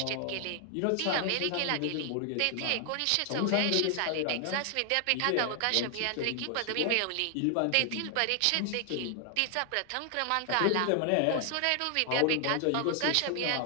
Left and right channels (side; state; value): both; different; correlation 0.00